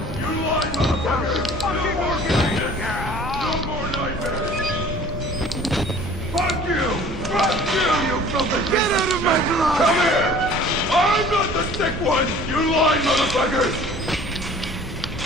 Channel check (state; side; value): normal; both; correlation 0.49